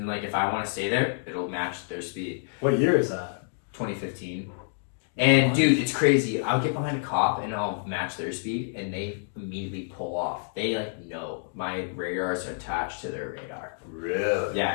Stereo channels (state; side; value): silent; right; digital silence